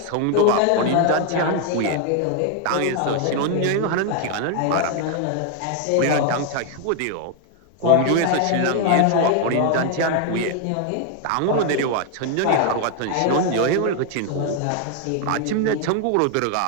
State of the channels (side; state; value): both; different; correlation 0.01